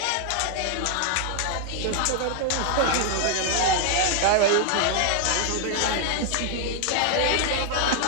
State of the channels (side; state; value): both; different; correlation 0.00